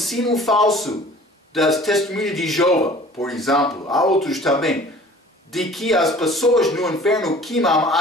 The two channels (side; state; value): both; normal; correlation 0.47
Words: falso das testemunhas de Jeová, por exemplo, há outros também, de que as pessoas no inferno queimam